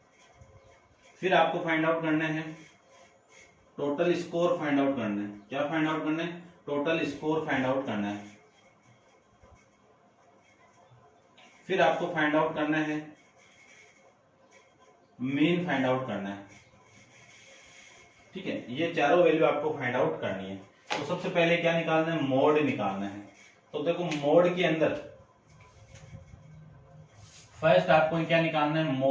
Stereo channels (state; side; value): identical; both; correlation 1.00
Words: फिर आपको फाइंड आउट करना है टोटल स्कोर फाइंड आउट करना है। क्या फाइंड आउट करना है? टोटल स्कोर फाइंड आउट करना है। फिर आपको फाइंड आउट करना है मीन फाइंड आउट करना है, ठीक है। ये चारों वैल्यू आपको फाइंड आउट करनी है। तो सबसे पहले क्या निकालना है? मोड निकालना है। तो देखो मोड के अंदर फर्स्ट आपको क्या निकालना है?